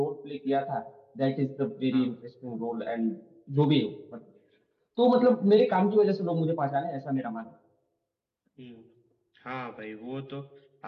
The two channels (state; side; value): identical; both; correlation 1.00